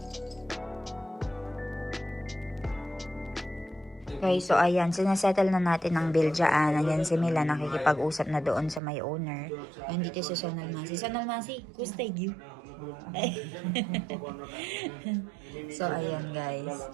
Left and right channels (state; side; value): drops out; left; at 8.8 s